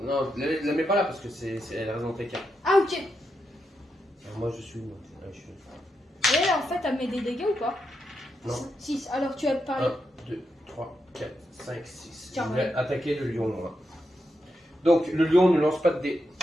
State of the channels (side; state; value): both; normal; correlation 0.84